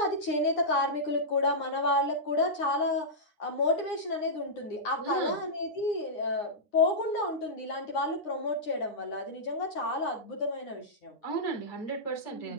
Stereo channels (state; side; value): late; right; 9.8 ms